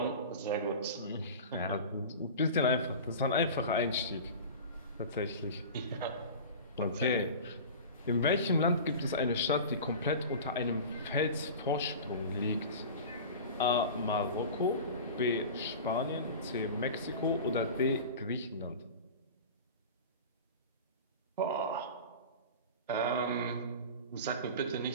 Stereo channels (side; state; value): both; inverted; correlation -0.34